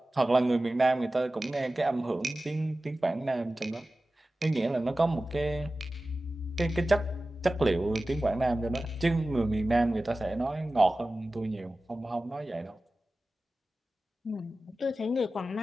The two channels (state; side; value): normal; both; correlation 0.96